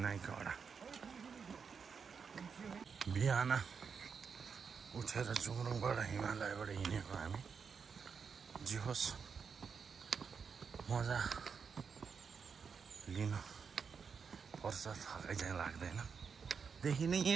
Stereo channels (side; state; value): left; quieter; 6.0 dB